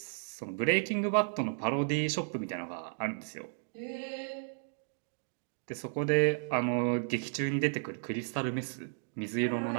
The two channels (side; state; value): left; silent; digital silence